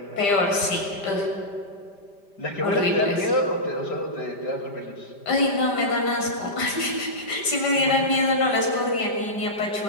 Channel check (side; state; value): right; late; 5.0 ms